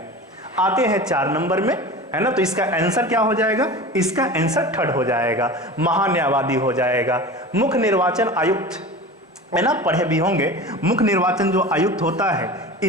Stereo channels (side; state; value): both; normal; correlation 0.34